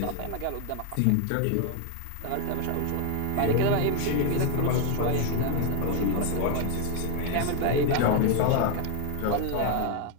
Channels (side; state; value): both; different; correlation 0.01